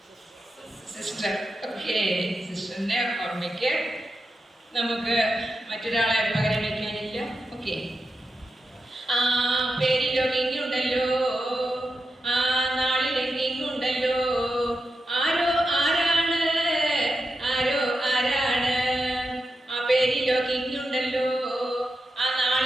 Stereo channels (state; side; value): normal; both; correlation 0.88